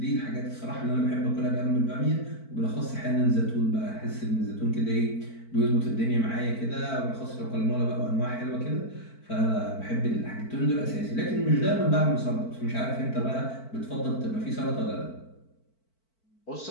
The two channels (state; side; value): late; right; 4.5 ms